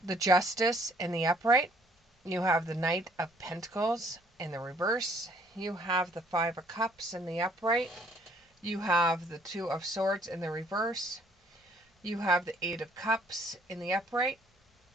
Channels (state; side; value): normal; both; correlation 0.62